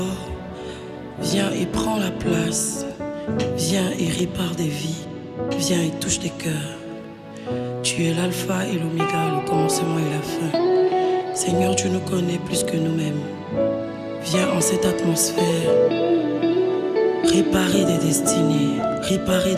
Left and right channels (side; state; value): both; identical; correlation 1.00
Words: Viens et prends la place. Viens et répare des vies. Viens et touche des cœurs. Tu es l'alpha et l'oméga, le commencement et la fin. Seigneur, tu nous connais plus que nous-mêmes. Viens en cette atmosphère réparer des destinées, réparer